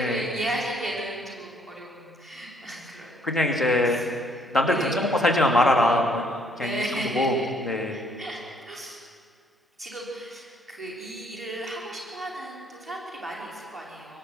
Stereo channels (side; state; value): both; normal; correlation 0.65